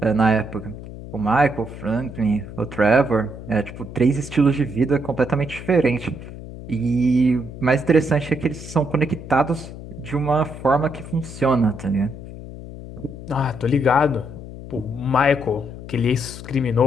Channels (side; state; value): left; noise; hum, 12 dB below the sound